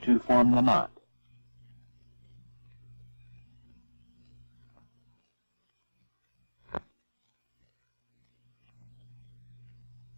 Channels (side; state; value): both; inverted; correlation -1.00